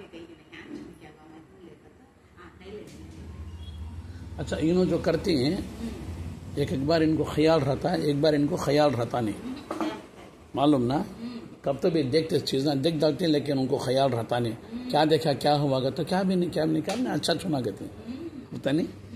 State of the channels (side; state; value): both; identical; correlation 1.00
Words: गई नहीं क्या बाबा नहीं लेता था नहीं ले। अच्छा, इन्हों जो करती हैं एक बार इनको ख्याल रहता है, एक बार इनको ख्याल रहता नहीं, मालूम ना? कब तो भी देखते चीज़ें देख डालते हैं, लेकिन उनको ख्याल रहता नहीं। क्या देखा, क्या हुआ तो क्या भी नहीं अच्छा छुना कहते होता नहीं।